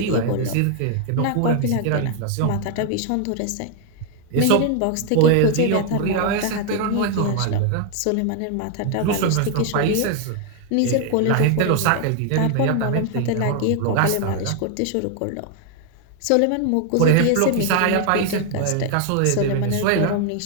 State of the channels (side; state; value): both; different; correlation 0.00